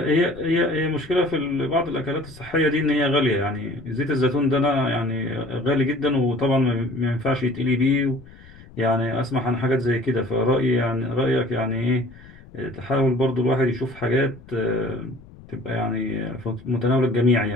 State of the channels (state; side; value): noise; left; rumble, 21 dB below the sound